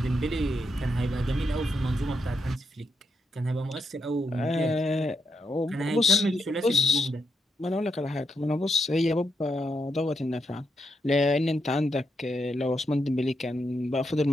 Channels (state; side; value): normal; both; correlation 0.82